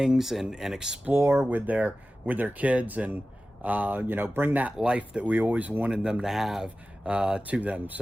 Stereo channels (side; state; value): both; normal; correlation 0.95